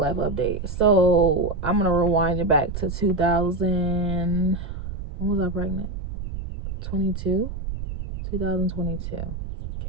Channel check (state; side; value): noise; right; rumble, 7 dB below the sound